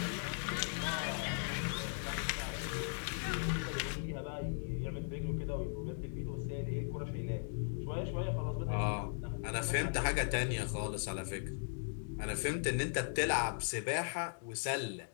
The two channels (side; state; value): right; silent; digital silence